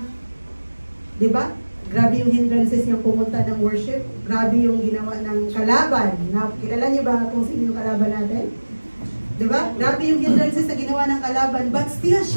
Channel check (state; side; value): inverted; both; correlation -1.00